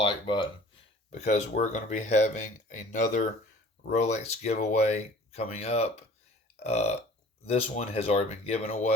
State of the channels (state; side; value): normal; both; correlation 0.48